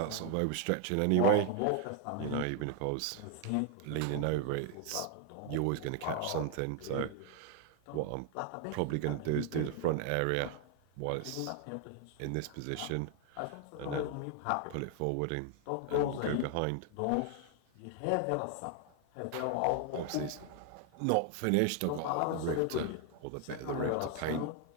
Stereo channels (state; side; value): different; both; correlation 0.00